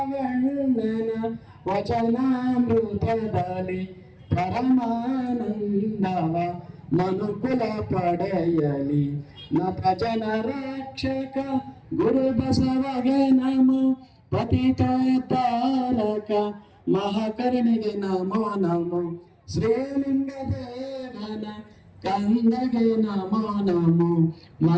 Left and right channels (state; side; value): identical; both; correlation 1.00